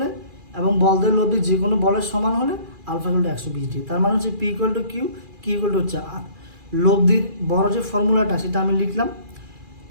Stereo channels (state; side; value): late; left; 2.4 ms